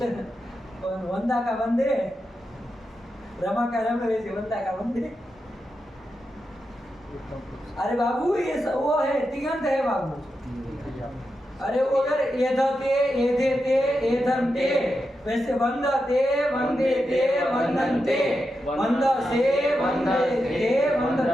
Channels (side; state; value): both; normal; correlation 0.88